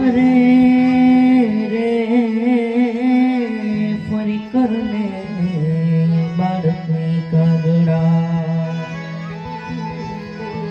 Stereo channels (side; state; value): both; identical; correlation 1.00